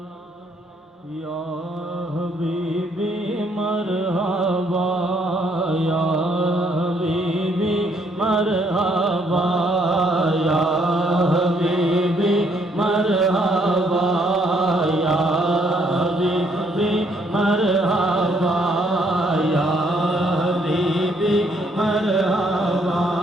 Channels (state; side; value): normal; both; correlation 0.68